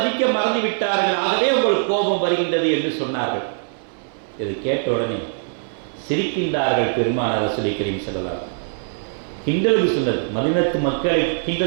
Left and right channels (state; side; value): silent; left; 65 dB below the other